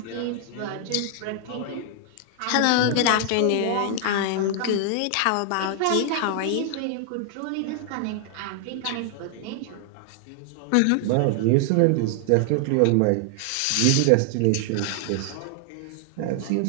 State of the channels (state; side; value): different; both; correlation 0.00